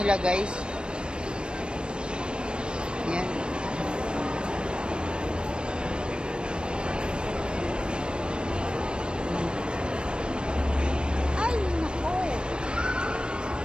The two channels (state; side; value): late; left; 0.054 ms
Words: guys. Yan. Ay, nako.